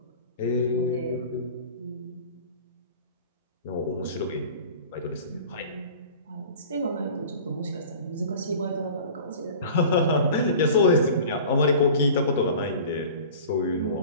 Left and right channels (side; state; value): both; inverted; correlation -0.41